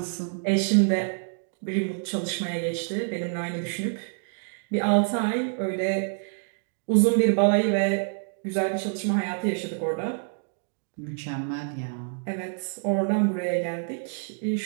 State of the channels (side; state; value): left; silent; 60 dB below the other